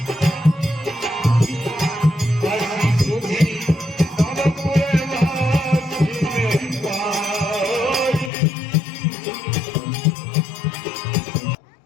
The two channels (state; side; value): drops out; right; at 8.3 s